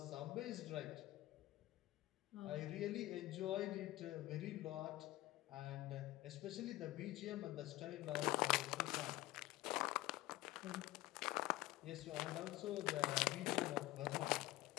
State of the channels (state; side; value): quieter; right; 17.3 dB